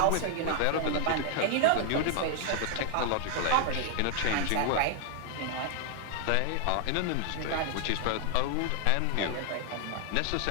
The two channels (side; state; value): both; different; correlation 0.00